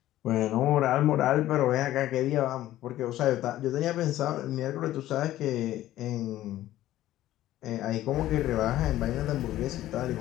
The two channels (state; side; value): quieter; right; 14.2 dB